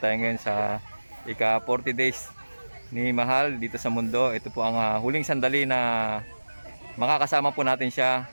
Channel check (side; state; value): both; inverted; correlation -1.00